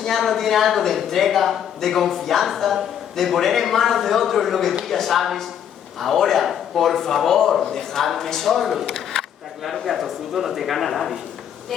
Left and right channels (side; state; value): right; quieter; 9.2 dB